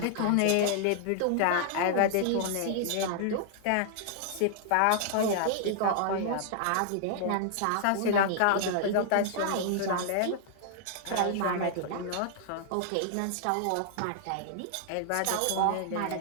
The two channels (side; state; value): both; different; correlation -0.01